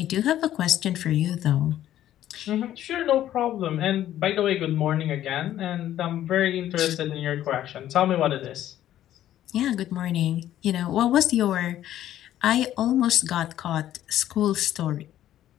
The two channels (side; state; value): right; quieter; 12.3 dB